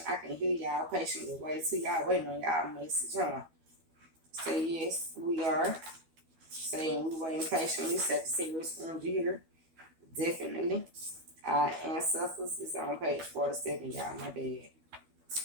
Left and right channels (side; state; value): left; late; 12 ms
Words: I can hear y'all patiently wait till y'all waiting on y'all message, huh? Say yes, we are. Saying we waiting patiently. Sagittarius energy here. Definitely. Our ancestors is on page 47, y'all. My bad.